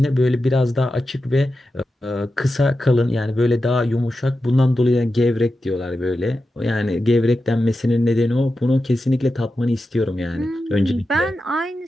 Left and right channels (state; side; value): normal; both; correlation 0.91